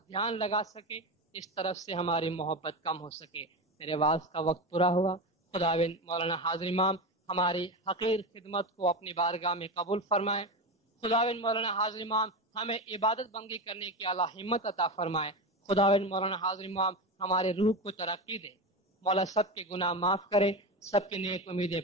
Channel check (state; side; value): normal; both; correlation 0.20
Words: دھیان لگا سکے، اس طرف سے ہماری محبت کم ہو سکے۔ میرے واعظ کا وقت پورا ہوا۔ خداوند مولانا حاضر امام ہماری حقیر خدمت کو اپنی بارگاہ میں قبول فرمائے۔ خداوند مولانا حاضر امام ہمیں عبادت بندگی کرنے کی اعلیٰ ہمت عطا فرمائے۔ خداوند مولانا حاضر امام ہمارے روح کو ترقی دے۔ مولا سب کے گناہ معاف کرے، سب کی نیک امیدیں